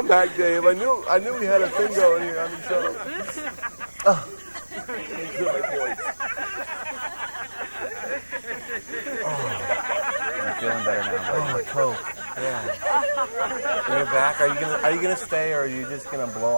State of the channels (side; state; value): both; inverted; correlation -1.00